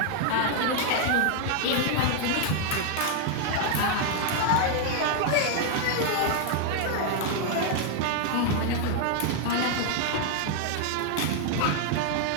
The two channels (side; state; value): both; different; correlation 0.00